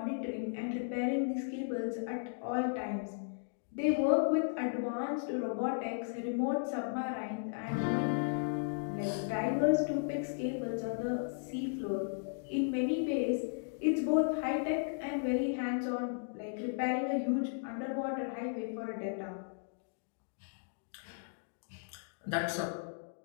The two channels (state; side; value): silent; right; digital silence